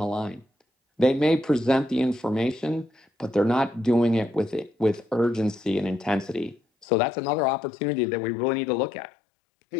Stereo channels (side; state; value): right; drops out; at 6.9 s